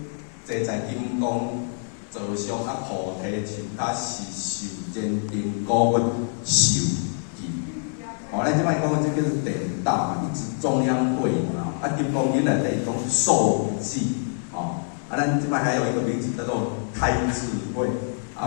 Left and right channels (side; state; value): right; silent; digital silence